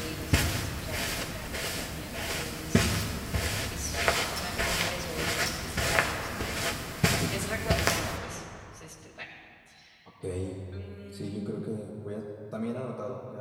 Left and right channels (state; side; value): identical; both; correlation 1.00